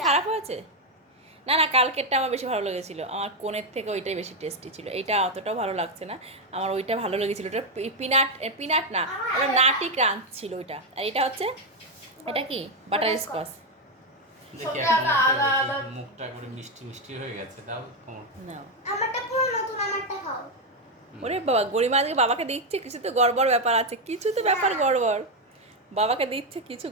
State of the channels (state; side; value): normal; both; correlation 0.05